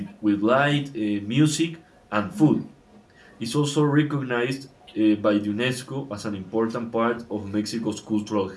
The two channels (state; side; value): identical; both; correlation 1.00